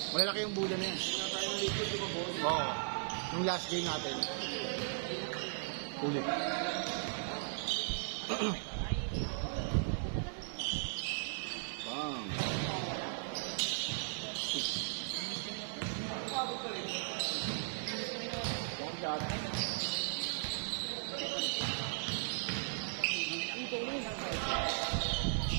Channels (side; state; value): left; silent; digital silence